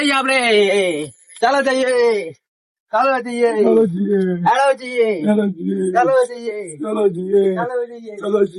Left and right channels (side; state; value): both; identical; correlation 1.00